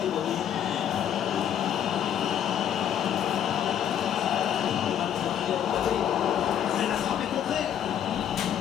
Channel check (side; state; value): right; quieter; 9.7 dB